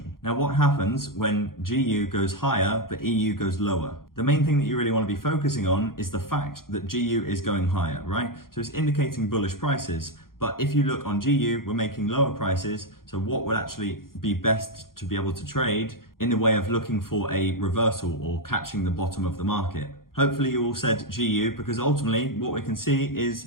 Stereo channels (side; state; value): right; late; 0.92 ms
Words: Now, what happens when GU goes higher, but EU goes lower? The main thing that you really want to be focusing on is the fact that GU is going higher, right? So it's indicating bullish prices. But if you look on GU, we're making lower prices. So what would actually be best to be able to trade in the way of looking for a reversal or catching the bottom of the market? Hopefully you all said GU, because ultimately what we can see